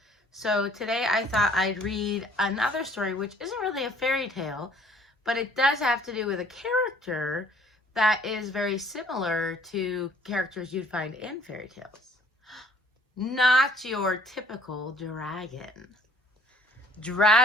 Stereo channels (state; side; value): normal; both; correlation 0.57